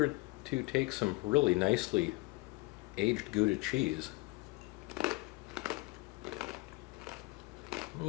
to take some really nicely aged Gouda cheese.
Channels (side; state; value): right; quieter; 24.4 dB